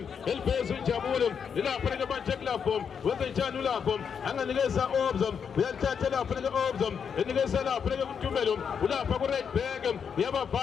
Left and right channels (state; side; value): quieter; right; 7.0 dB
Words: elibhezi uNjabulo lapha ke manje lapho wenza njani lapho anganikeza Obza uyathatha lapha ke Obza enikeza lapha ke kuNtumelo ulapha ku Redback